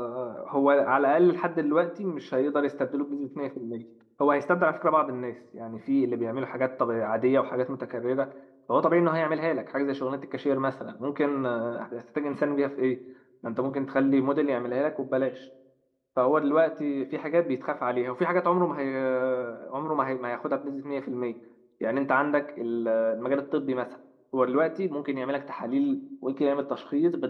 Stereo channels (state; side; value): identical; both; correlation 1.00